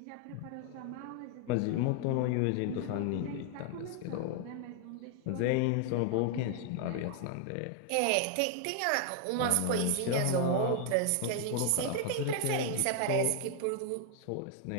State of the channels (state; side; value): different; both; correlation 0.00